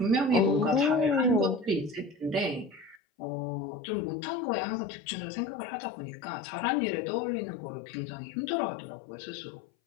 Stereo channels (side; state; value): right; drops out; at 3.0 s